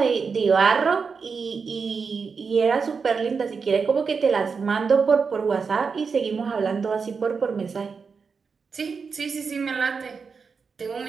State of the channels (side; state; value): left; quieter; 5.4 dB